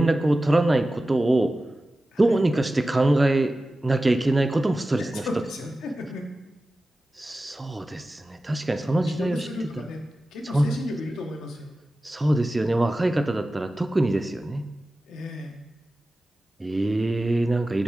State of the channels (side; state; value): both; normal; correlation 0.95